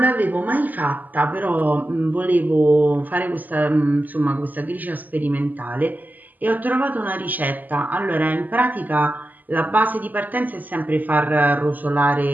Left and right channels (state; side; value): late; left; 0.083 ms